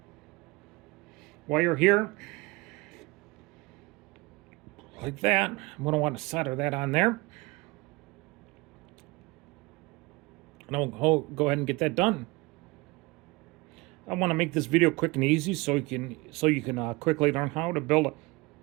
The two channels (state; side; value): quieter; left; 24.1 dB